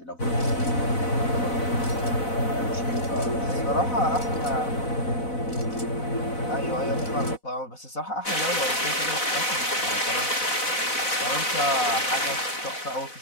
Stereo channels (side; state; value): right; late; 4.0 ms